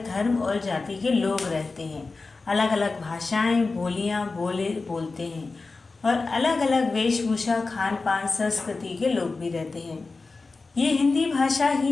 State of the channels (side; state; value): right; quieter; 3.8 dB